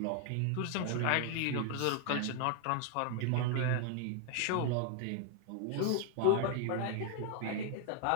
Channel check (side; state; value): both; different; correlation 0.00